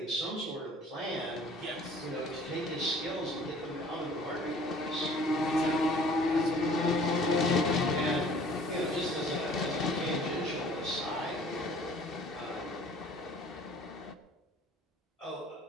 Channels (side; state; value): both; normal; correlation 0.52